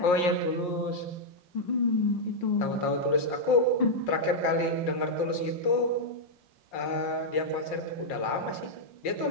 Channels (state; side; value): late; right; 5.6 ms